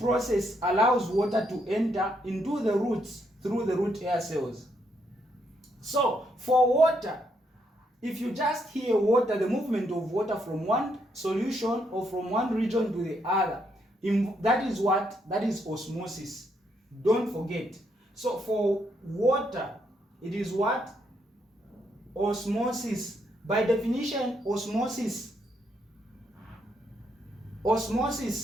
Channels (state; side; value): normal; both; correlation 0.75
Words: allows water to enter into the roots through the root air cells? So for water, if you just hear water, the movement of water from one solution or from one region to the other, that is what? That is osmosis. Don't forget. So for water, it is what? Osmosis. By definition, osmosis